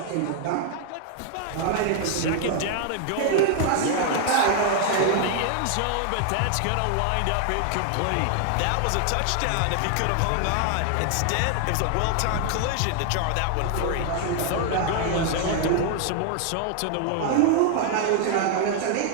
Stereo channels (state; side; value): different; both; correlation 0.00